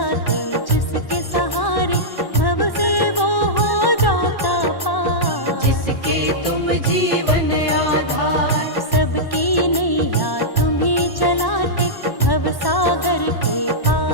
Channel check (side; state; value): right; late; 1.1 ms